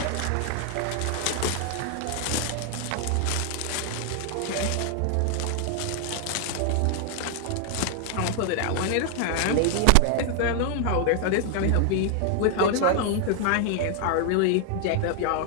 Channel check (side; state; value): both; different; correlation 0.00